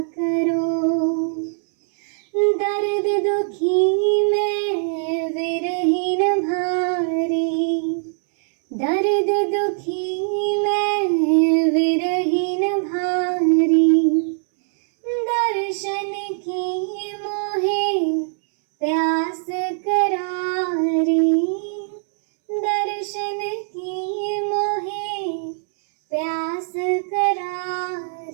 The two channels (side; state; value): left; silent; digital silence